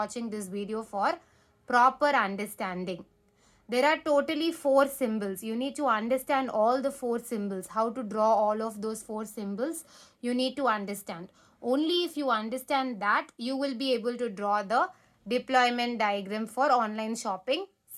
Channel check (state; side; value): identical; both; correlation 1.00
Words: this video for proper understanding. There are totally 4 symbols. You need to understand all the 4 symbols. How to draw all of those 4 symbols, you need to understand. Only if you understand that, you will be able to draw the deployment diagram for online shopping